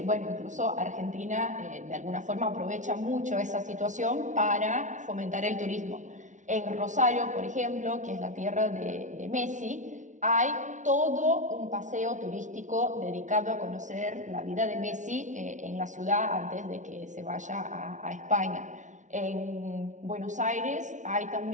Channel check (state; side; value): late; left; 0.36 ms